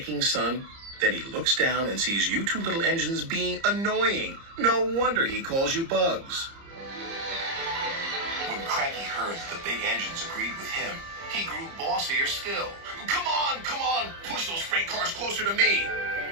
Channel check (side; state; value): left; late; 30 ms